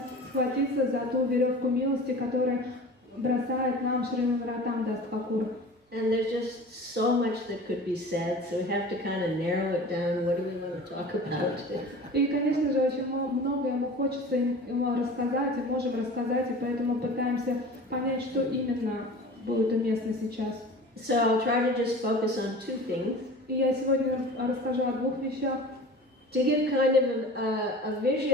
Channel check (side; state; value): both; normal; correlation 0.39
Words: схватиться за ту веревку милости, которую бросает нам Шрила Наротtam Das Thakur. And there's just so much that could be said, so we have to kind of narrow it down. What do we want to talk about? И, конечно же, очень многое ему хочется рассказать, и можем рассказать, и поэтому пытаемся понять, что именно будет уместно сейчас. So I'll try to just focus on two things. И я сегодня расскажу о двух вещах. To give kind of a